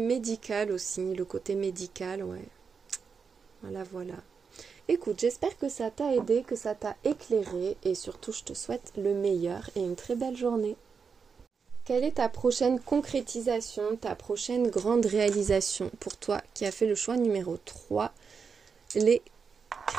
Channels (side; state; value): left; quieter; 5.7 dB